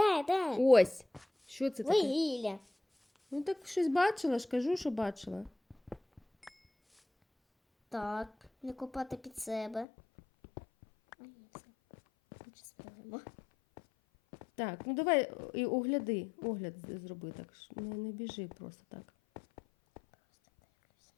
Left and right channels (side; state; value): right; drops out; at 9.9 s